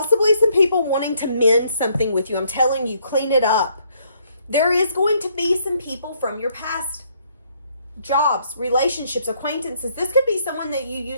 some people wanting to mend something with you. I'm telling you, clean it up. There is going to be some people from your past jobs, relationships, acquaintances. This could be someone that you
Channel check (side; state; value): both; inverted; correlation -0.69